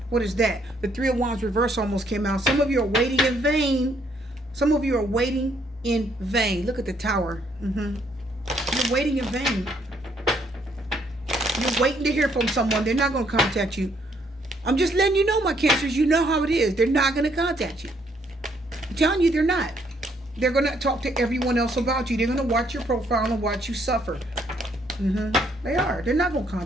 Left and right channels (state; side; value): normal; both; correlation 0.69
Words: What is that? The 3 of Wands reverse almost came out. Some of you are waiting in vain. Some of you are waiting in vain. Look at the Tower. You're waiting in vain. You're waiting to hear from someone. They're not going to contact you. I'm just letting you know, my Cancers. You know how it is. They're not going to contact you. I'm telling you, they're not. They're going to talk to everyone else about you. They're going to watch your profile and watch you suffer. They are. They're not going to